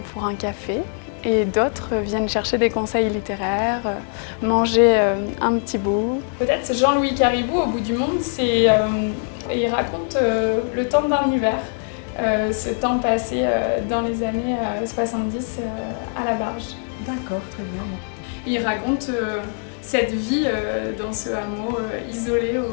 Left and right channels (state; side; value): silent; right; 57 dB below the other